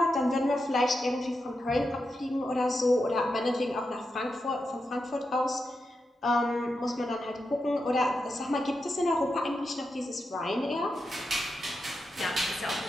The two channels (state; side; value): normal; both; correlation 0.87